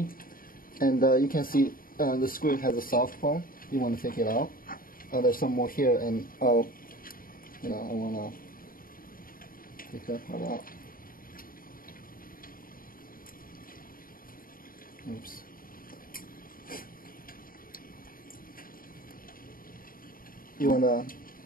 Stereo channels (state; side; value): late; right; 0.41 ms